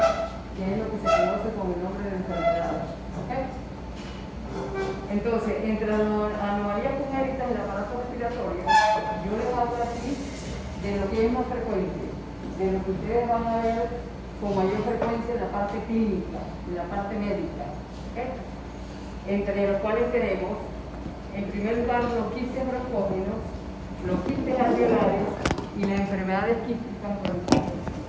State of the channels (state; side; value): identical; both; correlation 1.00